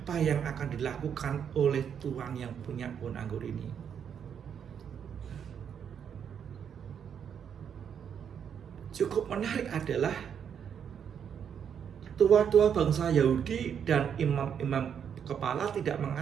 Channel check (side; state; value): left; quieter; 8.0 dB